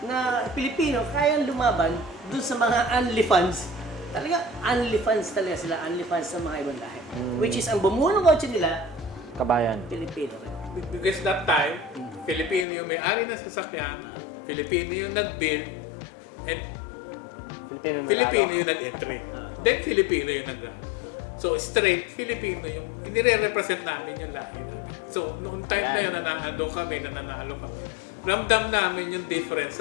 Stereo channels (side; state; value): right; drops out; at 12.7 s